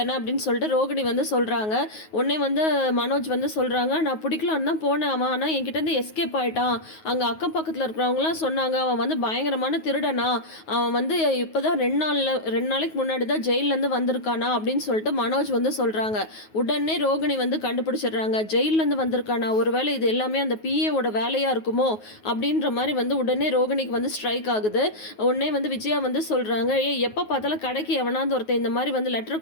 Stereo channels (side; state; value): right; late; 9.4 ms